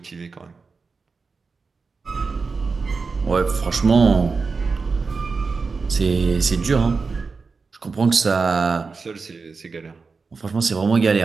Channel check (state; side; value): quieter; left; 4.6 dB